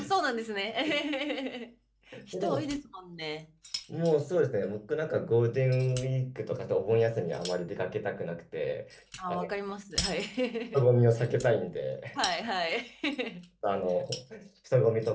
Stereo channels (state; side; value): identical; both; correlation 1.00